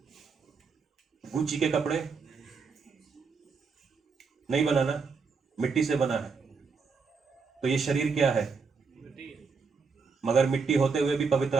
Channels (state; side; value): quieter; left; 5.0 dB